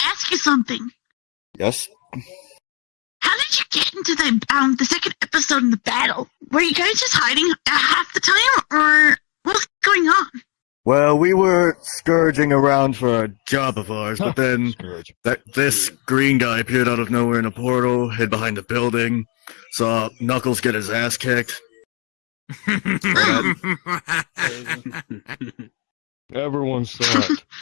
ask you something. Yes. How did you get into the second episode in the battle? Were you guys just hiding half the time, or what's going on? Well, we were scourging around for a job of ours, but then Scourge. This green guy appeared out of nowhere in a portal, hid behind a building, saw Knuckles get his ass kicked. Everyone saw it.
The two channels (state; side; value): quieter; right; 34.2 dB